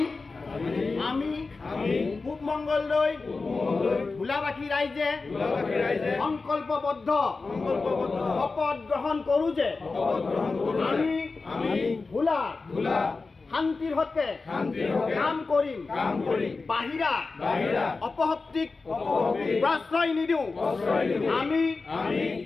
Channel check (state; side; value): quieter; right; 4.0 dB